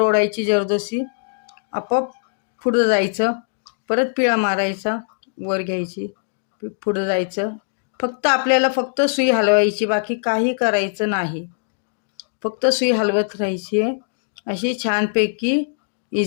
जरदोशी, आपोआप पुढं जायचं, परत पिळा मारायचा, वर घ्यायची, पुढं जायचं। फक्त आपल्याला सुई हलवायची, बाकी काही करायचं नाही। फक्त सुई हलवत राहायची आहे। अशी छानपैकी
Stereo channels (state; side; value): silent; right; digital silence